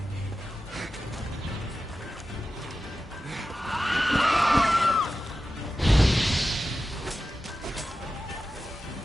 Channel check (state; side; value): normal; both; correlation 0.93